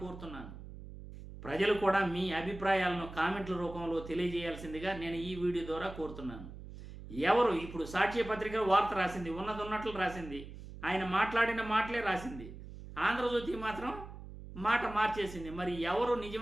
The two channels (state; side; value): noise; right; hum, 13 dB below the sound